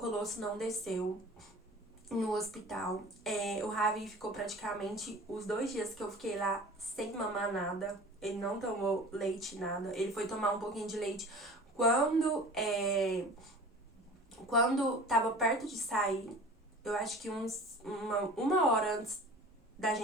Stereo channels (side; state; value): both; normal; correlation 0.41